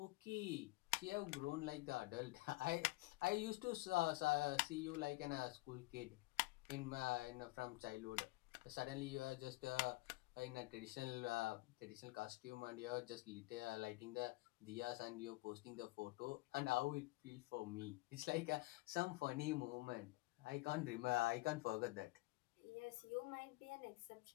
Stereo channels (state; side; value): quieter; right; 21.4 dB